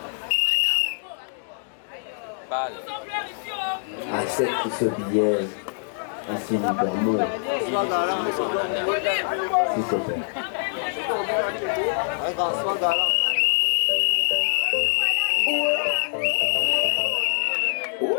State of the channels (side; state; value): right; silent; digital silence